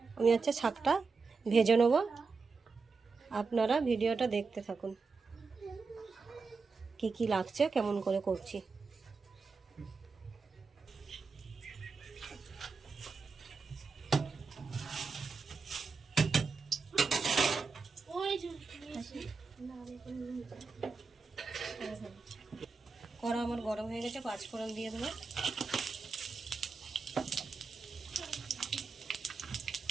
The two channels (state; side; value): quieter; left; 4.6 dB